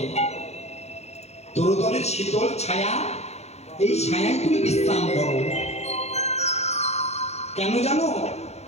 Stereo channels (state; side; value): late; right; 0.31 ms